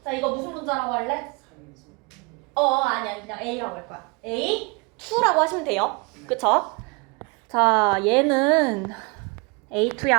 자, 이거 무슨 분자라고 할래? 아니 그냥 A라고 할 거야. A2라고 하시면 돼요. 그쵸? 자, 얘는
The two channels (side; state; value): left; quieter; 29.5 dB